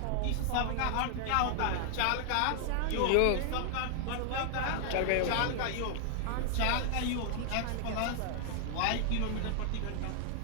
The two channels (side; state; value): both; different; correlation 0.00